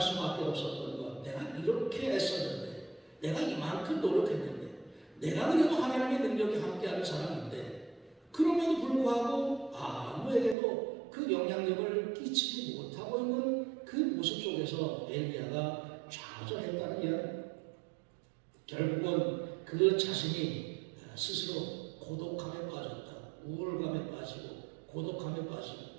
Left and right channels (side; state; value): left; drops out; at 10.6 s